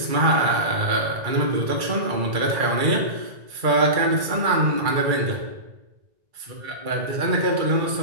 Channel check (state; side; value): late; left; 2.3 ms